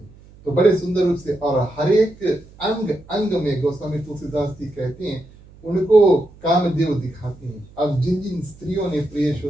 तो बड़े सुंदर रूप से और हर एक अंग अंग में गोस्वामी तुलसीदास जी कहते हैं उनको कामदेव दिखाते हैं। अब जिन जिन स्त्रियों ने प्रिय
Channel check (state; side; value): noise; right; hum, 24 dB below the sound